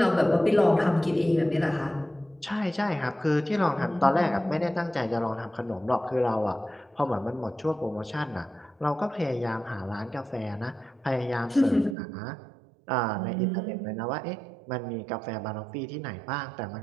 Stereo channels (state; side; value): drops out; left; at 12.0 s